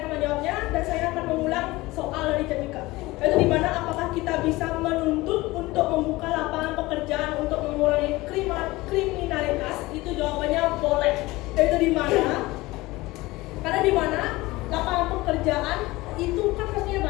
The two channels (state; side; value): quieter; right; 20.2 dB